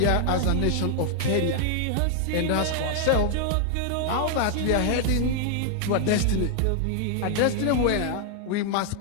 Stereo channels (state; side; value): different; both; correlation 0.00